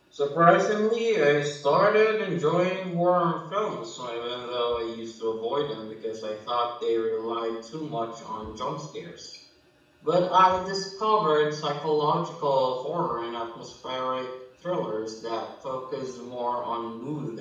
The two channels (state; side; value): identical; both; correlation 1.00